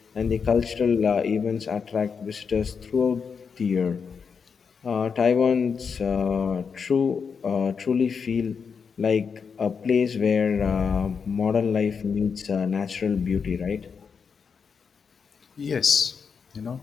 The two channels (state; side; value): quieter; right; 6.0 dB